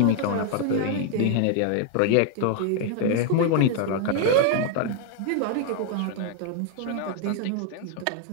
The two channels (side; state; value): both; different; correlation 0.00